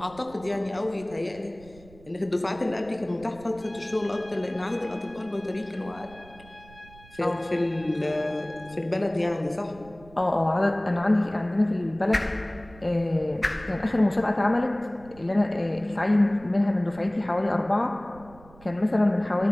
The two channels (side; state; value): right; noise; rumble, 22 dB below the sound